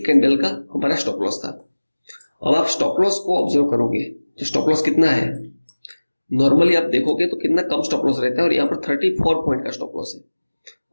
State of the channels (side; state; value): both; inverted; correlation -1.00